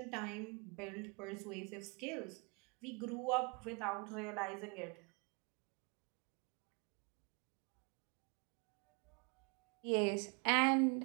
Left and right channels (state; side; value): quieter; left; 32.8 dB